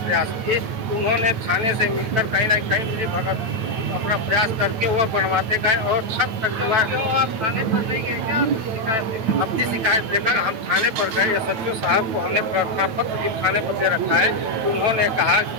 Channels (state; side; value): late; left; 9.1 ms